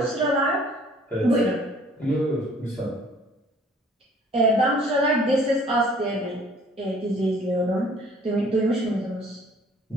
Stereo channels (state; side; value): normal; both; correlation 0.55